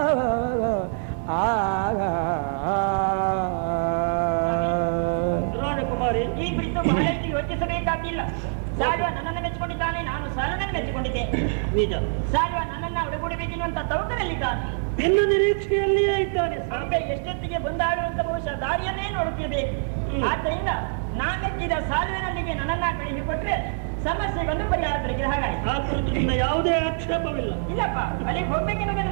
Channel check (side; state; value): left; silent; 59 dB below the other